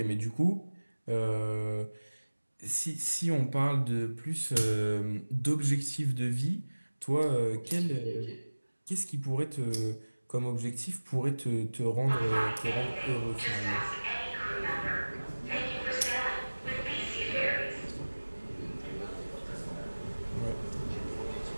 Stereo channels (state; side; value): inverted; both; correlation -1.00